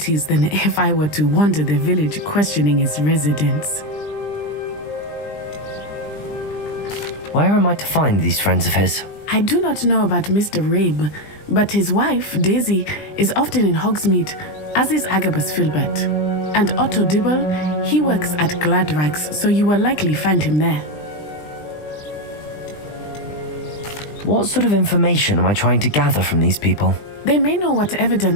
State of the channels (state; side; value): late; right; 20 ms